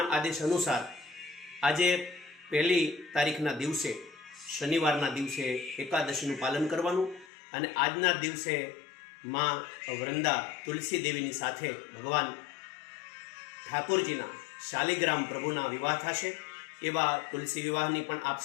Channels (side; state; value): right; drops out; at 7.2 s